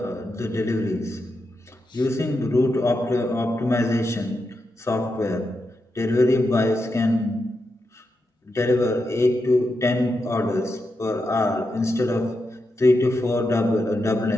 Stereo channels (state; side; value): normal; both; correlation 0.86